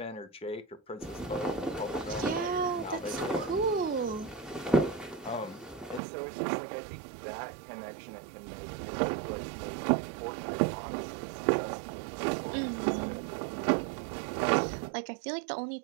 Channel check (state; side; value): drops out; left; at 6.0 s